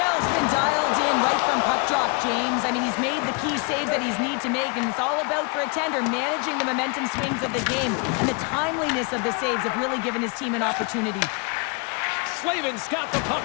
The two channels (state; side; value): quieter; right; 32.3 dB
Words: been dialed in right from puck drop, James. I mean, he's made the key saves that he's need to make, and it's all about, for a tender, managing the momentum swings of the game. And the timeliness of the saves have really given his team an opportunity. Slavin's got the puck